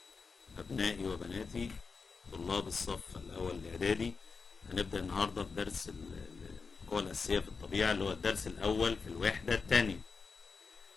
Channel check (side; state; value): right; quieter; 4.9 dB